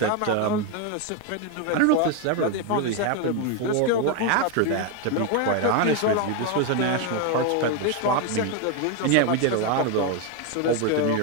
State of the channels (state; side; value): different; both; correlation 0.02